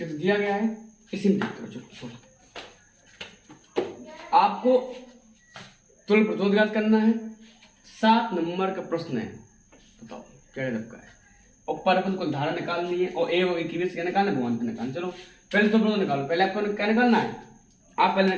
गया है, इसी में चलो आपको तुल्य प्रतिरोध करना है। 7 नंबर का प्रश्न है, बताओ क्या का है, और परपथ को धारा निकालनी है और ए और की क्या निकालना है, भगवान को निकालना। चलो पहले तुल्य प्रतिरोध निकालो, पहले आपको क्या निकालना है, आप पहले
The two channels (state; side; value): identical; both; correlation 1.00